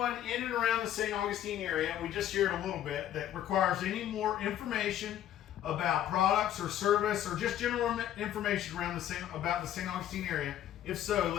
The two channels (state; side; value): quieter; right; 11.5 dB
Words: in and around the St. Augustine area, we just shared a little bit, that requires any more information about products or service or just general information around about the St. Augustine area? If so,